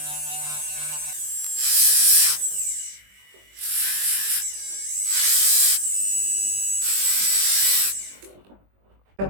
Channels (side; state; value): left; late; 20 ms